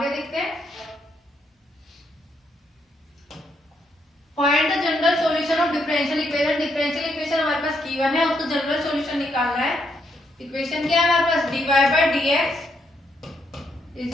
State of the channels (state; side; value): normal; both; correlation 0.76